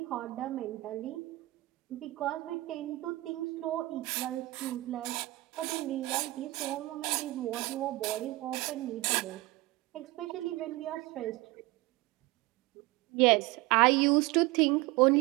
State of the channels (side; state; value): left; quieter; 20.1 dB